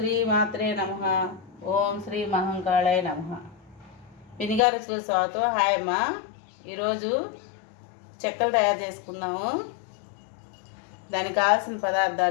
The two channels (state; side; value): drops out; right; at 4.6 s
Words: మాత్రే నమః. ఓం శ్రీ మహంకాళాయ నమః. పినిగారుచులు స్వాగతం. హాయ్ అమ్మా. ఈరోజు చెక్కలు తయారు చేసుకుందాము. దానికి కావాల్సిన